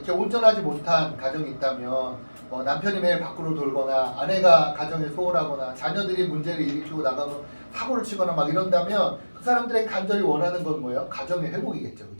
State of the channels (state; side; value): inverted; both; correlation -1.00